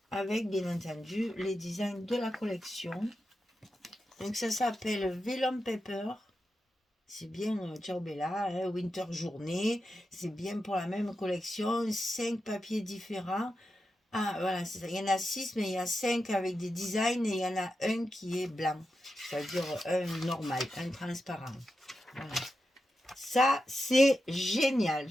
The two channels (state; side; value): normal; both; correlation 0.89